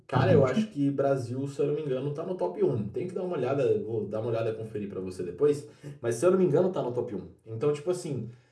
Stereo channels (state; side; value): identical; both; correlation 1.00